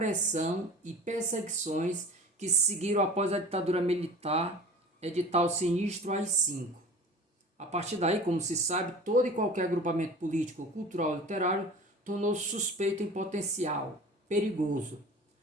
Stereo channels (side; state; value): both; normal; correlation 0.39